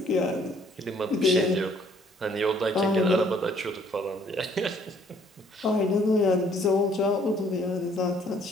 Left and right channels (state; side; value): normal; both; correlation 0.61